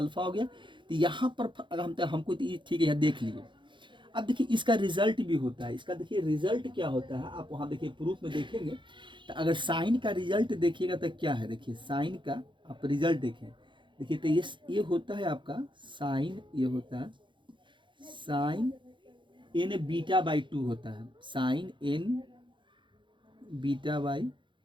हो गया। तो यहाँ पर अगर हमको तो ये ठीक है, यहाँ देख लीजिए। अब देखिए इसका रिजल्ट भी होता है, इसका देखिए रिजल्ट क्या होता है, आप वहाँ देखिए प्रूफ में देखेंगे। तो अगर साइन का रिजल्ट देखिएगा तो क्या है, देखिए साइन का आप रिजल्ट देखें, देखिए तो ये होता है आपका साइन, ये होता है साइन एन बीटा बाई 2 होता है, साइन एन बीटा बाई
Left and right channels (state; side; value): late; left; 0.23 ms